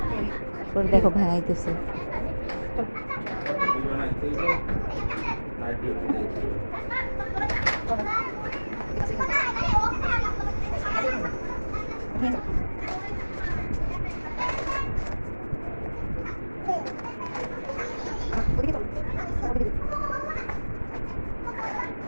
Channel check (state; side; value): inverted; both; correlation -1.00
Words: পরে দেখো ভাঙাইতেছে।